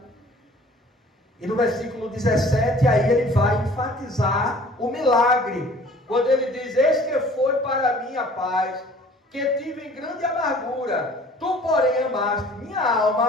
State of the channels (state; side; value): normal; both; correlation 0.51